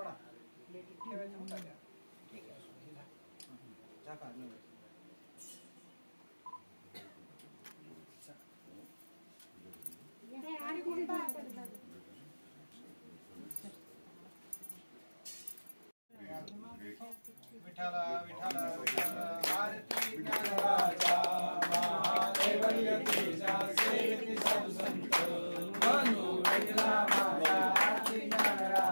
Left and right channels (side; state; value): both; inverted; correlation -1.00